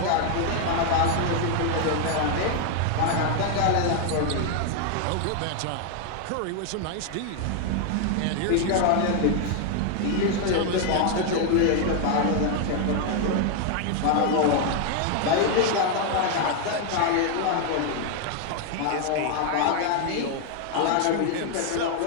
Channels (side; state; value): both; different; correlation 0.00